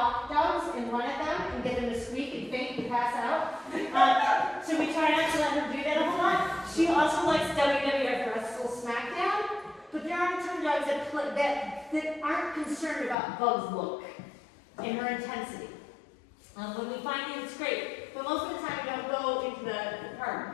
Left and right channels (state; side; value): drops out; right; at 13.2 s